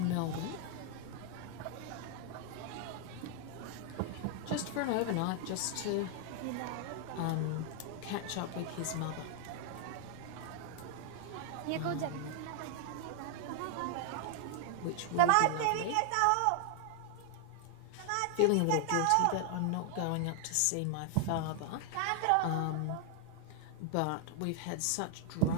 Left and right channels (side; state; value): both; different; correlation 0.00